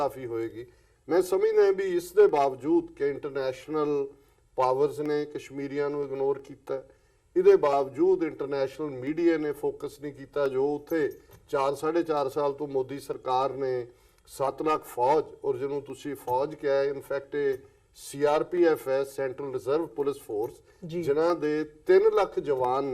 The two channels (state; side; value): identical; both; correlation 1.00